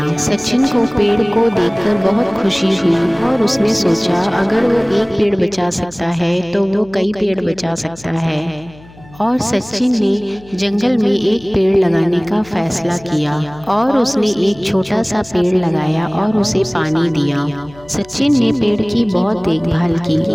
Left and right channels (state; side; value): noise; left; hum, 23 dB below the sound